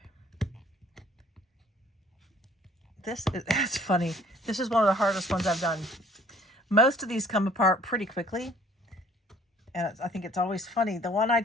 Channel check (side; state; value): both; normal; correlation 0.56